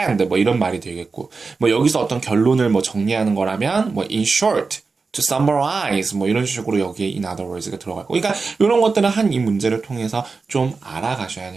뭐 이런 말이 되겠고 뭐 여기서 어떤 결론을 뭐 정리하는 거라면 뭐 in short to summarize 뭐 이런 식으로 여기에 in other words가 들어가고 그러니까 이런 것들은 한 이 문제를 통해서 좀 알아가셔야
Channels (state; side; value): quieter; left; 4.4 dB